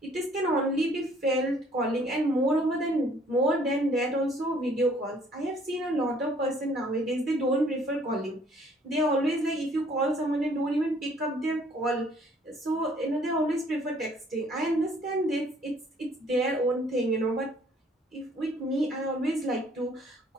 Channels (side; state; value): both; normal; correlation 0.60